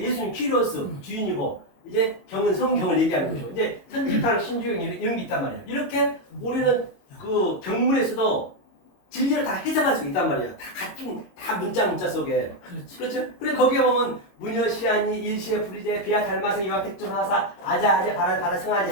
키리오스 주인이고 이제 경은 성경을 얘기하는 거죠. 이제 천지파랑 신주경 이런 게 있단 말이에요. 이렇게 우리는 그 경문에서도 진리를 다 해석할 수 있단 말이에요. 다 같은 다 문자 속에. 그렇죠? 그래 거기에 보면 무녀시아니 일시에 불이제 비아 닮아서 이와 백종하사 아자 바라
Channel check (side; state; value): right; late; 22 ms